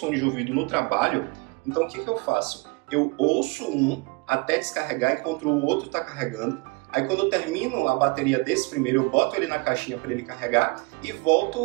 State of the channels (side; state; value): left; quieter; 26.8 dB